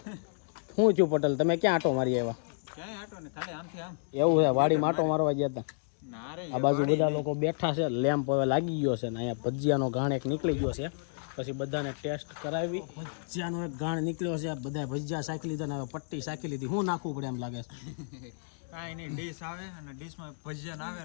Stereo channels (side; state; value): right; silent; digital silence